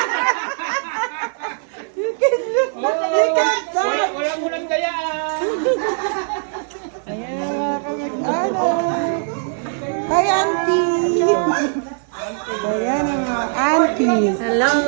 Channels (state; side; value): silent; left; 58 dB below the other